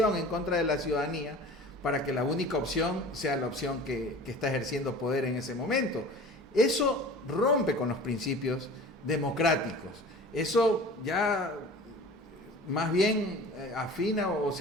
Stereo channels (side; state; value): both; normal; correlation 0.41